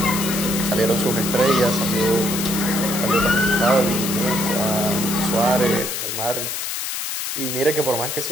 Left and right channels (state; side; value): noise; left; hiss, 4 dB below the sound